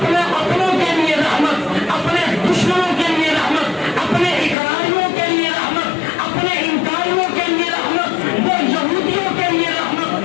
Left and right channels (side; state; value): right; drops out; at 4.5 s